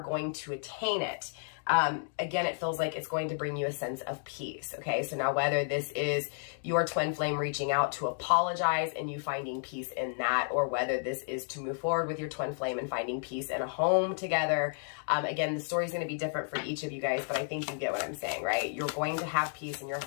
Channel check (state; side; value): silent; right; digital silence